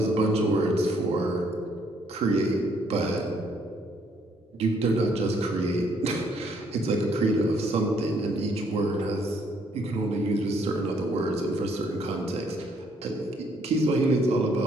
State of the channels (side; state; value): both; normal; correlation 0.68